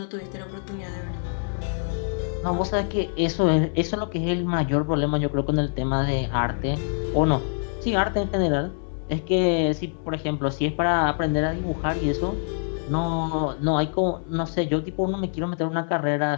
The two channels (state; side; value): silent; right; 62 dB below the other